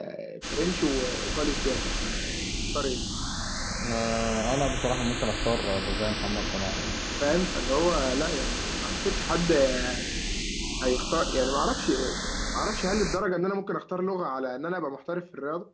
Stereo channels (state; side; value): identical; both; correlation 1.00